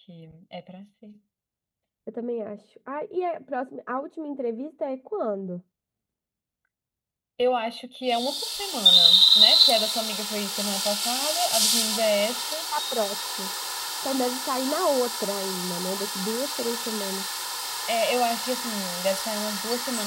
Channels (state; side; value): identical; both; correlation 1.00